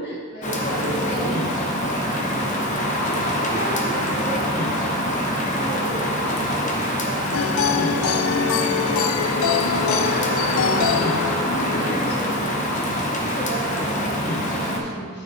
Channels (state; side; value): normal; both; correlation 0.14